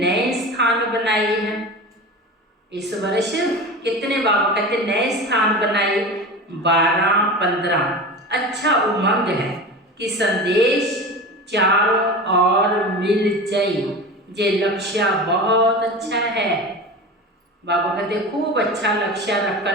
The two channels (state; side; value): normal; both; correlation 0.30